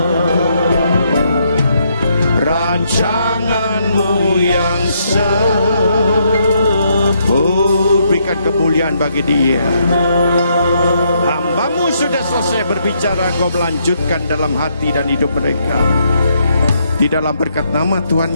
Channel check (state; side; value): inverted; both; correlation -0.74